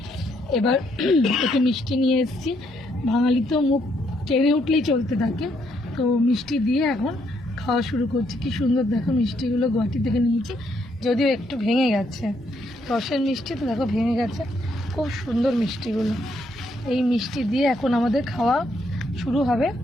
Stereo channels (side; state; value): both; normal; correlation 0.73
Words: এবার একটু মিষ্টি নিয়ে এসেছি। বাঙালি তো মুখ ট্রেনে উঠলেই চলতে থাকে, তো মিষ্টি দিয়ে এখন খাওয়া শুরু করছি। কি সুন্দর দেখো মিষ্টিগুলো গুয়াহাটি থেকে নিয়েছি, যদিও একটু ভেঙে গেছে। রসের মিষ্টি তো দেখো ভেঙে গেছে, খুব সুন্দর মিষ্টিগুলো। এই মিষ্টি দিয়ে এখন আমাদের খাওয়া শুরু হবে,